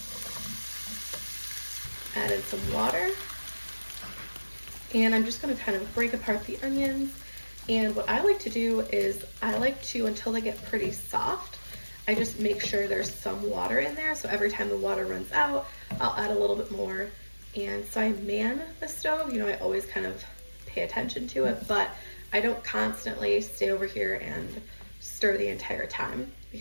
Add in some water. And I'm just gonna kind of break apart the onions. And what I like to do is I like to, until they get pretty soft, I just make sure there's some water in there. So every time the water runs out, I'll add a little bit more. And so I man the stove. You know, I always kind of pay attention to it, but I don't constantly stay over here and stir the entire time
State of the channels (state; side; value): inverted; both; correlation -1.00